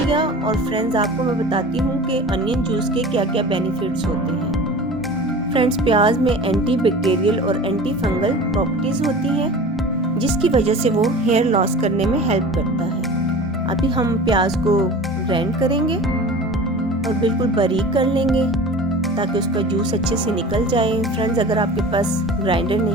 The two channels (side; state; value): both; normal; correlation 0.37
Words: और फ्रेंड्स आपको मैं बताती हूँ कि अनियन जूस के क्या क्या बेनिफिट्स होते हैं। फ्रेंड्स, प्याज में एंटी बैक्टीरियल और एंटी फंगल प्रॉपर्टीज होती हैं, जिसकी वजह से वो हेयर लॉस करने में हेल्प करता है। अभी हम प्याज को ग्राइंड करेंगे और बिल्कुल बारीक कर लेंगे ताकि उसका जूस अच्छे से निकल जाए। फ्रेंड्स, अगर आपके पास ग्राइंडर